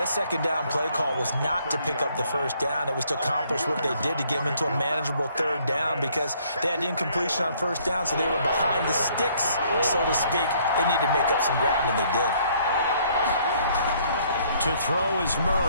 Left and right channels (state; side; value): inverted; both; correlation -0.64